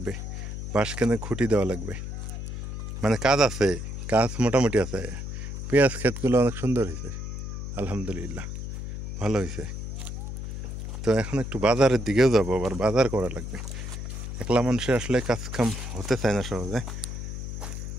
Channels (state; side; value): noise; left; hum, 6 dB below the sound